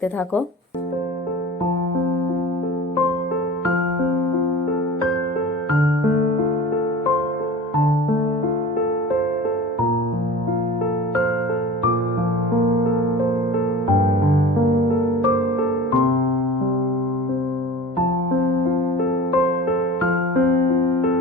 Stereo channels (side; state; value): both; normal; correlation 0.38